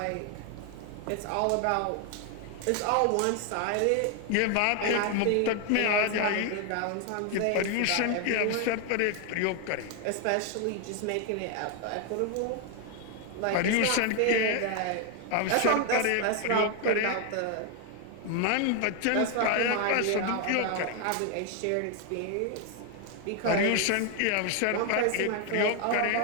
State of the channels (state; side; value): different; both; correlation 0.00